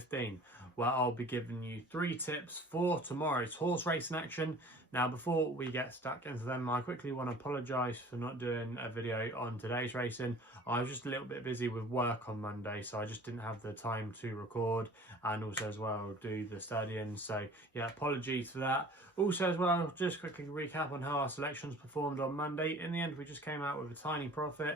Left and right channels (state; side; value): normal; both; correlation 0.46